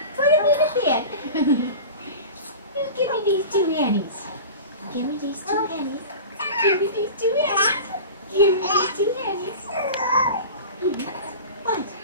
Put them in the pan. You give me these two handies. Give me these two handies. Give me these two handies. Give me these two handies. What?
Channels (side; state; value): both; inverted; correlation -0.33